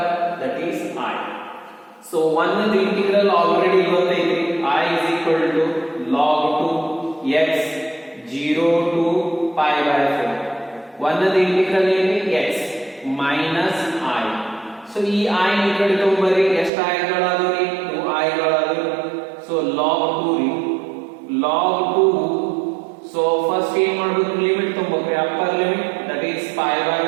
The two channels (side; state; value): left; drops out; at 16.7 s